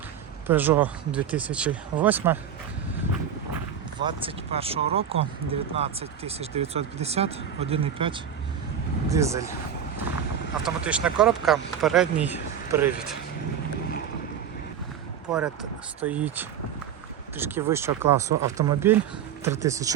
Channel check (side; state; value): left; quieter; 8.5 dB